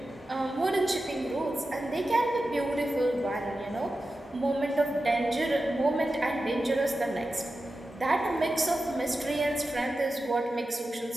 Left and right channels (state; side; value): normal; both; correlation 0.92